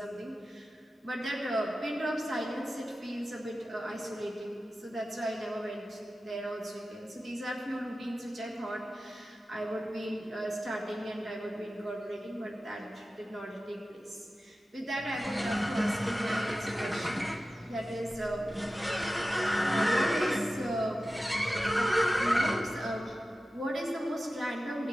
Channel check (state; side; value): normal; both; correlation 0.94